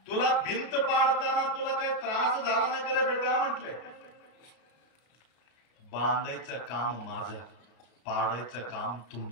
तुला भिंत पाडताना तुला काही त्रास झाला नाही का रे बेटा म्हटले. बांधायचं काम माझं, पाडायचं काम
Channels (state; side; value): late; right; 33 ms